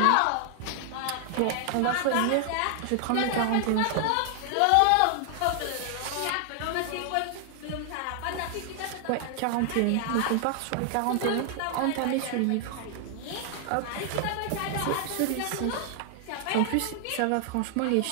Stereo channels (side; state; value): both; different; correlation 0.00